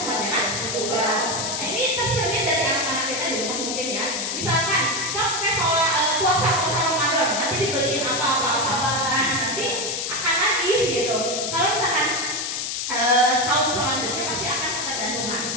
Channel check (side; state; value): left; noise; hiss, 2 dB below the sound